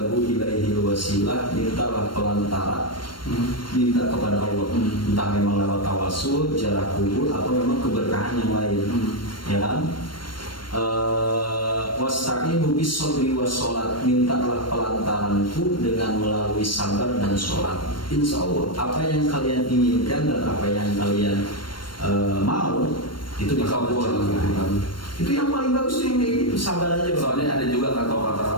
ilaihi wasilah, mintalah pelantara, minta kepada Allah, entah memang lewat tawasul, jarak kubur, atau memang keberkahan yang lain, ya kan? Wasta'inu bis-shabri was-sholat, mintalah pelantaranku dengan melalui sabar dan sholat. Insya Allah apa yang kalian inginkan dan apa yang kalian mau itu dikabulkan. Itu yang paling bagus tuh yang kayak gitu, sabar aja. Soalnya ada juga kata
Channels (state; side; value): late; right; 0.72 ms